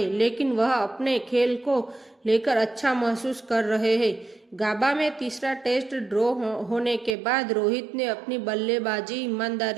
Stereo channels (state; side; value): drops out; left; at 7.2 s